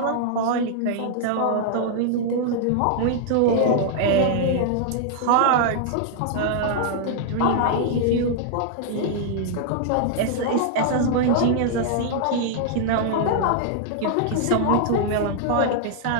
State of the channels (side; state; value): both; different; correlation -0.01